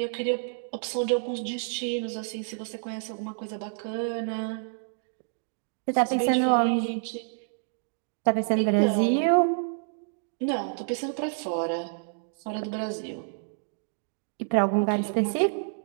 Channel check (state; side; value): silent; left; digital silence